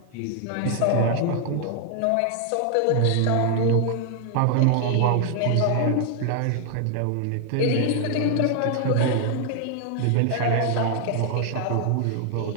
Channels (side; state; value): both; different; correlation 0.00